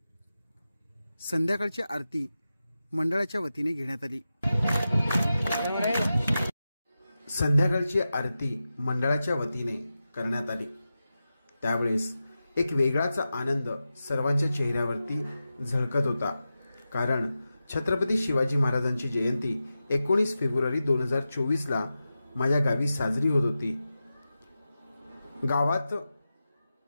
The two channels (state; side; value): inverted; both; correlation -0.92